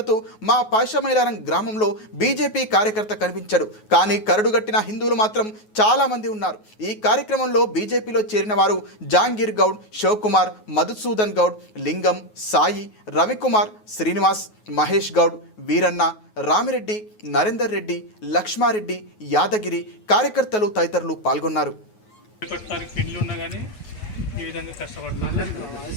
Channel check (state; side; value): late; right; 9.4 ms